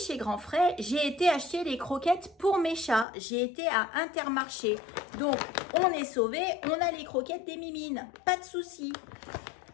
Grand Frais, j'ai été acheter les croquettes pour mes chats. J'ai été à Intermarché. Donc, on est sauvé. On a les croquettes des mimines. Pas de souci.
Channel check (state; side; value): drops out; right; at 3.1 s